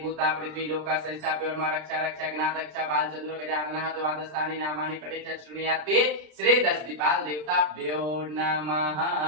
पृथ्वी लोका संस्थाप्य और रक्षा रक्षा गणात रक्षा बाल चंद्र गजानन द्वादशानि नामानि पठे चृणुयाते श्री दशदीपाल देवताभ्यो नमः।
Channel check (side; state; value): left; late; 33 ms